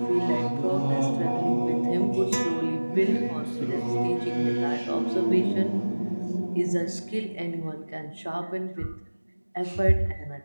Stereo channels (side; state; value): both; inverted; correlation -1.00